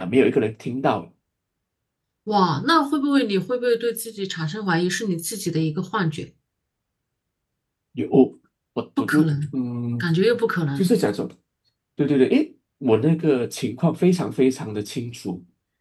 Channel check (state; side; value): identical; both; correlation 1.00